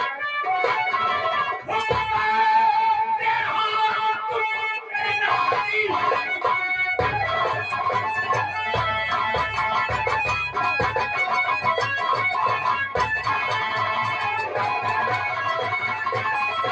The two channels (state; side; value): identical; both; correlation 1.00